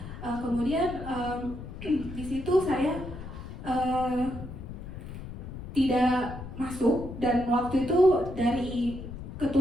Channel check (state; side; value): noise; left; rumble, 10 dB below the sound